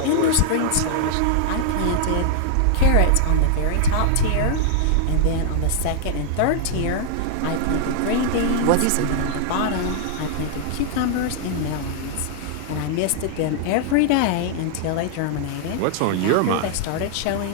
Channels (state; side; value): different; both; correlation -0.01